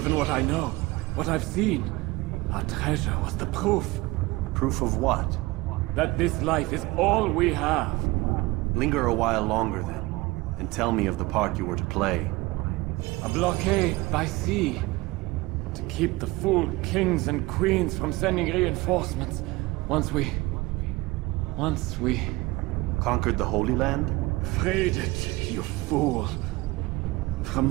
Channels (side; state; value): left; quieter; 21.3 dB